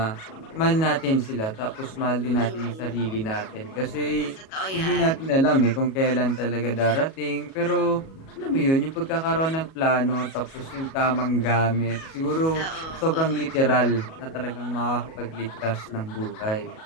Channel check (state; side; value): late; right; 37 ms